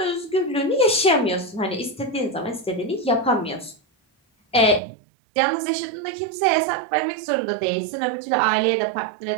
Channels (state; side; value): drops out; left; at 4.8 s